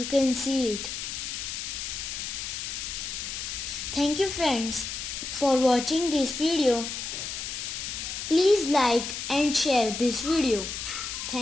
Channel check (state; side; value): noise; left; hiss, 5 dB below the sound